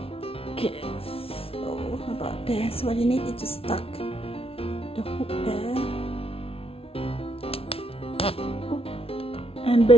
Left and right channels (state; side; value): late; right; 0.27 ms